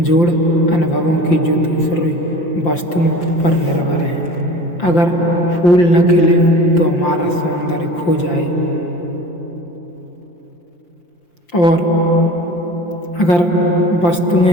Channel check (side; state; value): right; late; 5.8 ms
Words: अनुभवों की जो दूसरी वस्तुओं पर निर्भर हैं। अगर फूल न खिले तो हमारा सौंदर्य खो जाए, और अगर